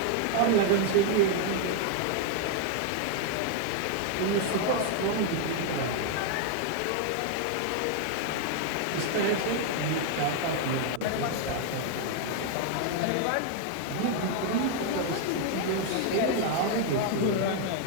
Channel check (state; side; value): different; both; correlation 0.00